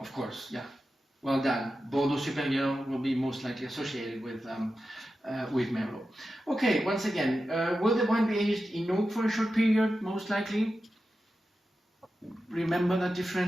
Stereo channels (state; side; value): normal; both; correlation 0.92